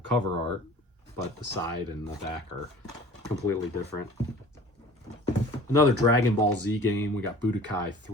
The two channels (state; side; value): normal; both; correlation 0.46